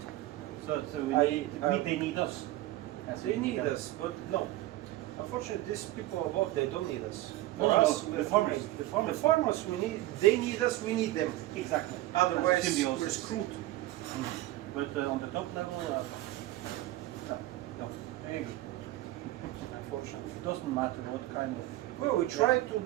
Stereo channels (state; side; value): quieter; left; 16.4 dB